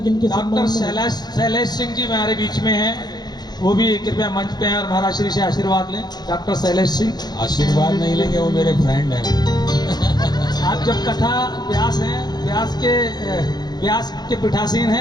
इनके डॉक्टर शैलेश सिंह जी हमारे बीच में हैं, वो भी कृपया मंच पे आए और महाराज श्री से आशीर्वाद लें। डॉक्टर शैलेश सिंह आशीर्वाद नहीं लेंगे, वो मेरे फ्रेंड हैं। आप जब कथा व्यास हैं, व्यास के पीठासीन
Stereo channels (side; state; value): right; late; 0.20 ms